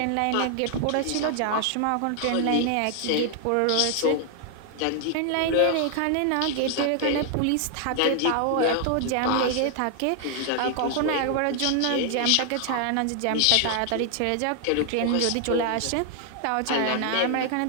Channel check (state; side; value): different; both; correlation 0.00